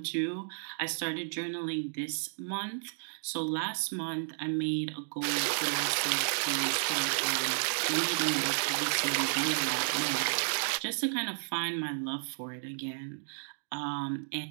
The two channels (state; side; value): silent; left; digital silence